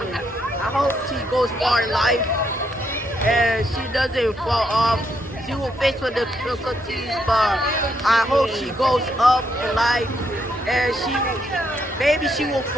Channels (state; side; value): normal; both; correlation 0.76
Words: I hope she goes far in life and she doesn't fall off. She will face with the difficulties, but I hope she goes up in life, and maybe she will